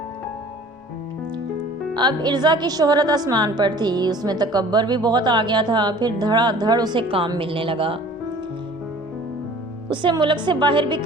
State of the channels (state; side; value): normal; both; correlation 0.48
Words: अब इर्ज़ा की शोहरत आसमान पर थी। उसमें तकब्बर भी बहुत आ गया था। फिर धड़ाधड़ उसे काम मिलने लगा। उसे मुल्क से बाहर भी